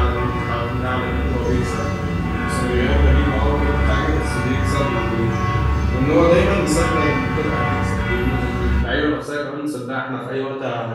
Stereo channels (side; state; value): both; identical; correlation 1.00